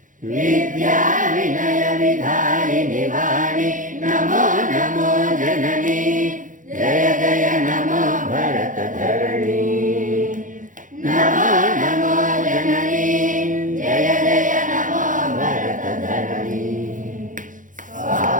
विद्या विनय विधायिनि वाणी नमो नमो जननी जय जय नमो भरत धरणी नमो नमो जननी जय जय नमो भरत धरणी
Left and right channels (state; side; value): late; left; 0.38 ms